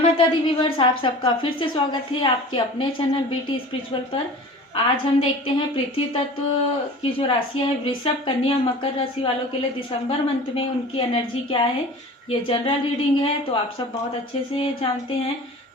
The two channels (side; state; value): both; normal; correlation 0.40